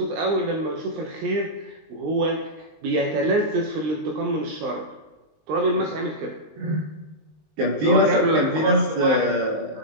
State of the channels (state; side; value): late; left; 19 ms